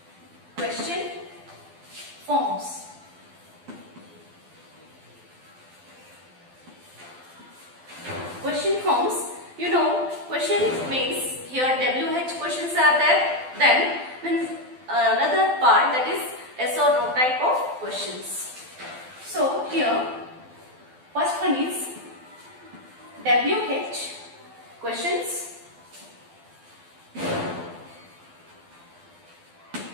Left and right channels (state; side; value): late; left; 12 ms